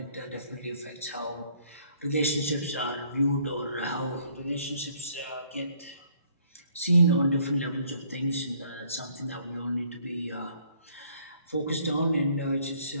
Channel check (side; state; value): both; inverted; correlation -0.63